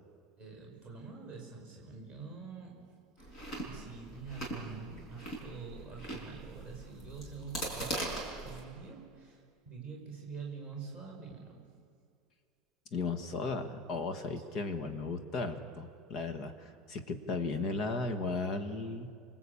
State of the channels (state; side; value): normal; both; correlation 0.32